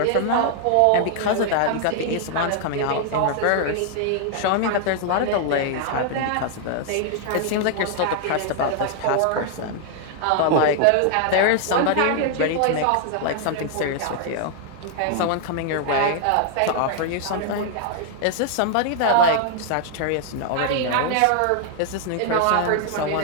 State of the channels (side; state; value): both; different; correlation 0.00